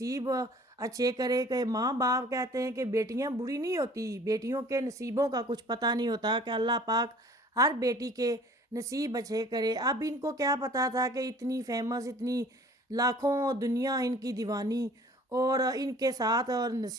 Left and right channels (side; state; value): both; normal; correlation 0.50